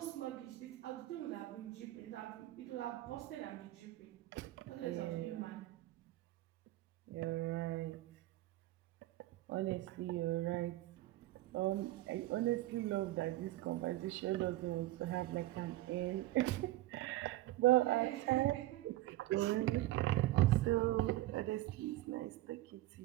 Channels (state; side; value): quieter; left; 16.7 dB